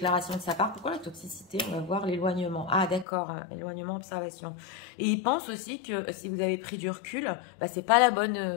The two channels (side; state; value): right; drops out; at 3.1 s